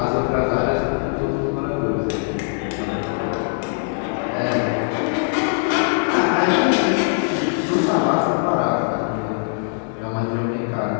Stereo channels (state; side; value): silent; right; 65 dB below the other